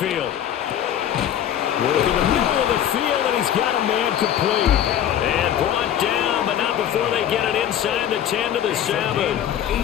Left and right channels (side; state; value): right; quieter; 10.4 dB